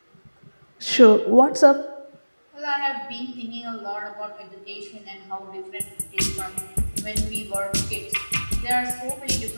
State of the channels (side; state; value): both; inverted; correlation -1.00